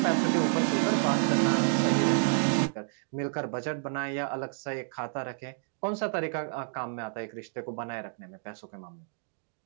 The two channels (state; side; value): silent; left; digital silence